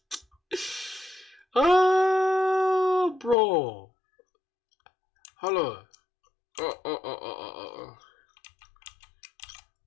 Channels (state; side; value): drops out; right; at 3.4 s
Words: Oh, bro. Hello.